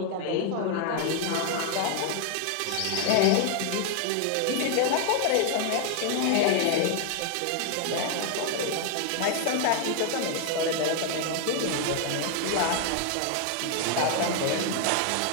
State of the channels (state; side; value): different; both; correlation 0.01